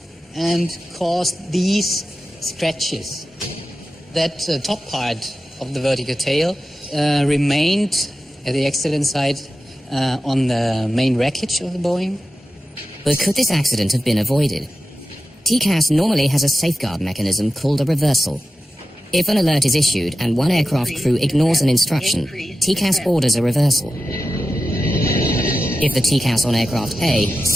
and caused these scratches. That top part of the vertical tail remained at the accident site on the main wreckage of the Boeing. But could this accident have been avoided? TCAS normally has a safeguard mechanism called a reversal. If an alert is issued and one aircraft crew ignores an instruction, TCAS orders a reversal. If the TCAS on aircraft A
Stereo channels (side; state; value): both; normal; correlation 0.93